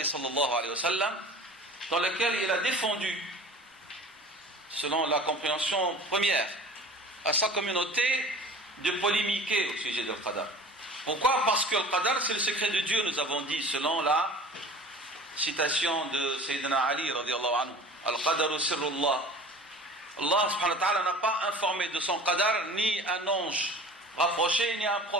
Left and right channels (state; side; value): normal; both; correlation 0.41